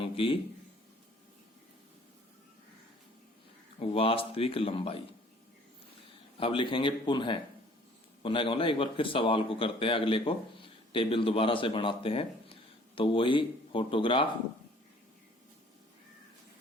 की वास्तविक लंबाई। अब लिखेंगे पुनः का मतलब एक बार फिर सवाल को करते हैं, अगले को टेबल दोबारा से बनाते हैं। तो वही फोटोग्राफ,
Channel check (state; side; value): normal; both; correlation 0.55